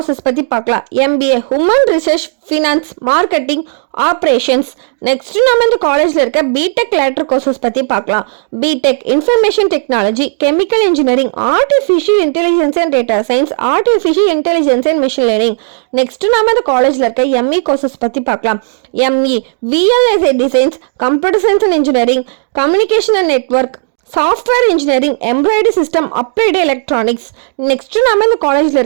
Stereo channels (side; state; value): left; silent; digital silence